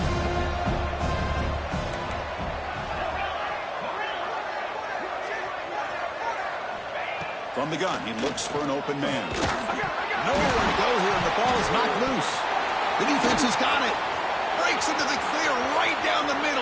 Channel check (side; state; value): both; identical; correlation 1.00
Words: From the gun, he looks for an open man. Nowhere to go here, and the ball is knocked loose. The defense has got it. Breaks into the clear right down the